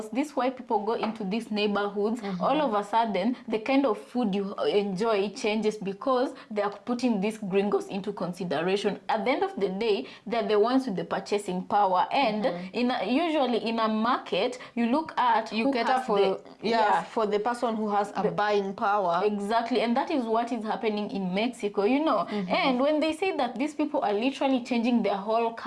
these white people go into these neighborhoods, all of a sudden the kind of food you enjoy changes, because they are putting these gringos into consideration. At the end of the day, they're the ones with the purchasing power, and usually in a market you look at You cater for for the person who has a buying power. Exactly, and that is what is happening in Mexico, you know. And when they say that these people are literally changing their whole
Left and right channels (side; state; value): both; identical; correlation 1.00